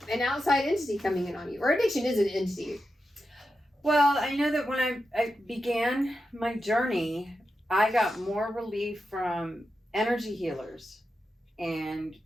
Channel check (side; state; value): both; normal; correlation 0.89